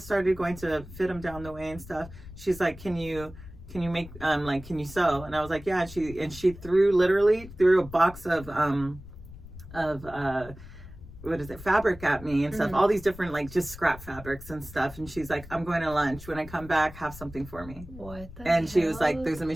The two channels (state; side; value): noise; left; rumble, 16 dB below the sound